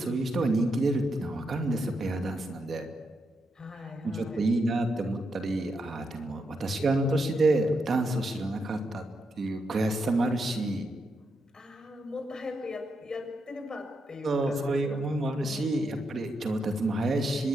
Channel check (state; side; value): normal; both; correlation 0.83